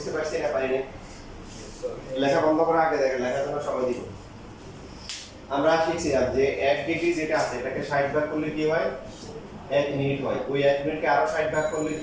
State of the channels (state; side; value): identical; both; correlation 1.00